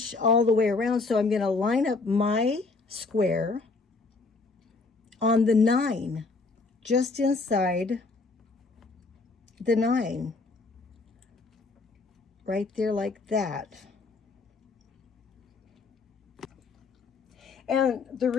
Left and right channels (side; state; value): right; quieter; 3.9 dB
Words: all the way around, so I'm going to line up my square on the 9, just inside the 9, right there like that. And the